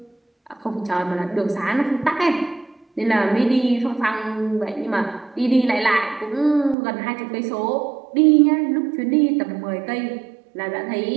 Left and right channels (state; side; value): drops out; left; at 6.8 s